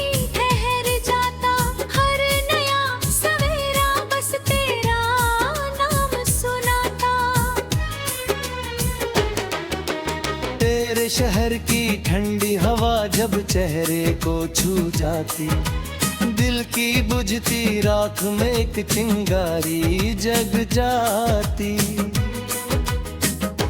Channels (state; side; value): identical; both; correlation 1.00